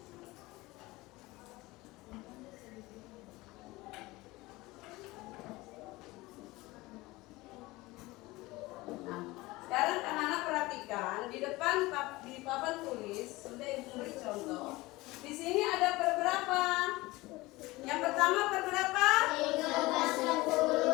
Sekarang anak-anak perhatikan di depan di papan tulis sudah Ibu beri contoh. Di sini ada per berapa? Yang pertama per berapa?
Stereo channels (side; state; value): right; quieter; 20.7 dB